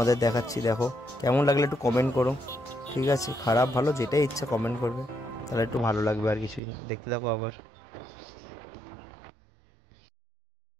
দেখাচ্ছি। দেখো কেমন লাগলে একটু কমেন্ট করো, ঠিক আছে, খারাপ ভালো যেটাই ইচ্ছা কমেন্ট করবে, তাহলে একটু ভালো লাগবে, আর কিছুই না। দেখতে থাকো আবার।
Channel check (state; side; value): drops out; left; at 6.6 s